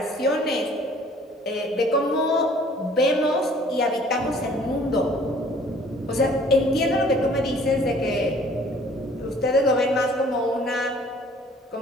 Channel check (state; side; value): normal; both; correlation 0.54